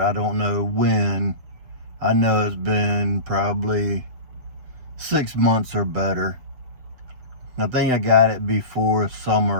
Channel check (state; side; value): late; left; 7.6 ms